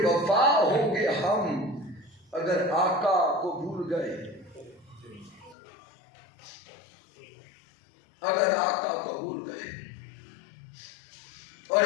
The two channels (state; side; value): drops out; right; at 5.6 s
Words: ہوں گے ہم اگر آقا کو بھول گئے, اگر آقا کو بھول گئے. اور